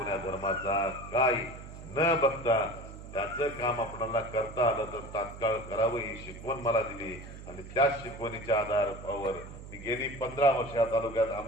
धर्माचा काही न बघता त्याचं काम आपल्याला करता आलं तर तात्काळ करावं ही शिकवण मला दिली. आणि त्याच शिकवणीच्या आधारावर मी गेली 15 वर्ष या तालुक्यात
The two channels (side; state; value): right; noise; hum, 13 dB below the sound